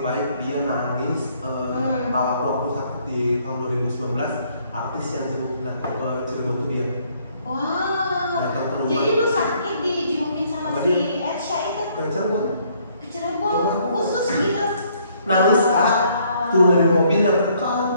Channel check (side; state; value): both; inverted; correlation -0.66